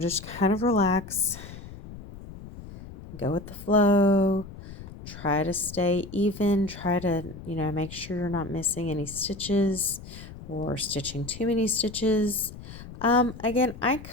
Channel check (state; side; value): noise; left; rumble, 14 dB below the sound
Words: kind of relax, go with the flow, try to stay even, try to, make sure you're not missing any stitches or stitching too many stitches. Again, I